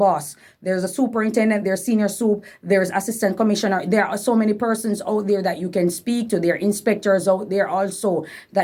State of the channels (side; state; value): both; identical; correlation 1.00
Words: There's a superintendent, there's senior soup, there's assistant commissioner. There are so many persons out there that you can speak to. There are inspectors out there also